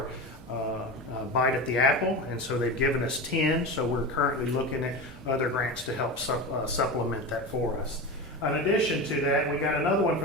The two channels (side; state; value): both; normal; correlation 0.24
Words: bite at the apple, and so they've given us 10, so we're currently looking at other grants to help supplement that for us. In addition to that, we got another one